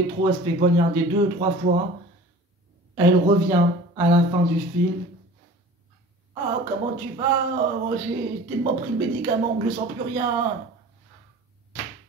elle se fait poignarder 2 ou 3 fois. Elle revient à la fin du film. Ah, comment tu vas? Oh, j'ai tellement pris le médicament que je sens plus rien.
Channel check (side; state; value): both; normal; correlation 0.42